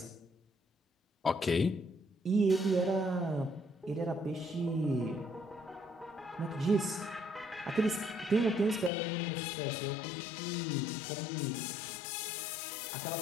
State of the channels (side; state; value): right; drops out; at 8.9 s